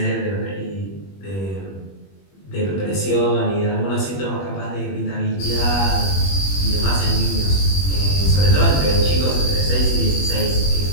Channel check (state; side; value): late; right; 21 ms